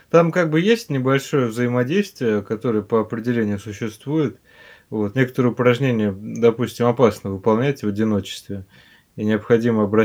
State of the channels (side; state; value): both; identical; correlation 1.00